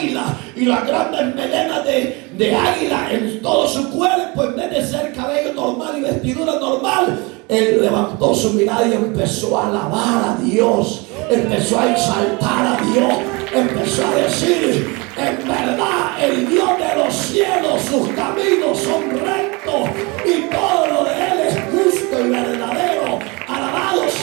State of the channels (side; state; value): left; quieter; 27.3 dB